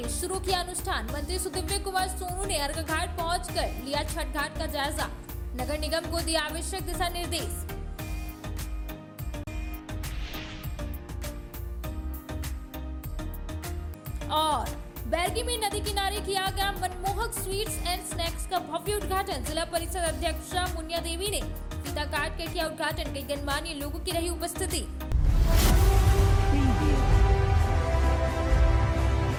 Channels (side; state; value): both; identical; correlation 1.00